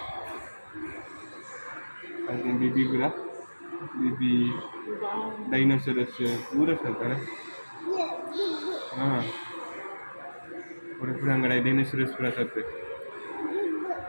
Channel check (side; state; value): both; inverted; correlation -1.00